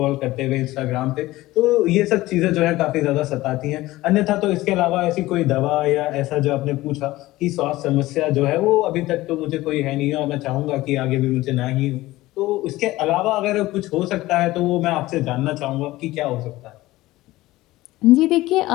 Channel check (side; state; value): right; quieter; 17.8 dB